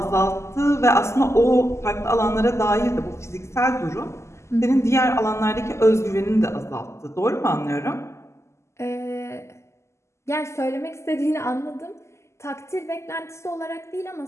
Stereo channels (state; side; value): late; right; 0.13 ms